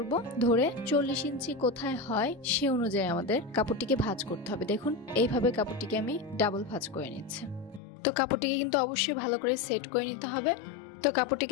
ধরে 40 ইঞ্চি কোথায় হয় সে অনুযায়ী আমাদের কাপড়টিকে ভাঁজ করতে হবে। দেখুন এইভাবে কাপড়টিকে আমি ডাবল ভাঁজ করে নিচ্ছি। তো কাপড়টিকে কিন্তু অবশ্যই ভালো করে সেট করে নিতে হবে। তো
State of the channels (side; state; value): right; drops out; at 7.8 s